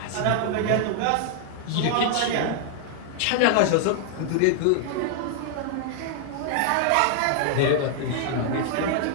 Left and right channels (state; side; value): different; both; correlation 0.00